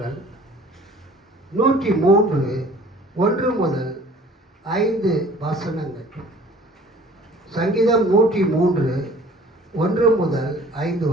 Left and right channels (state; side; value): normal; both; correlation 0.50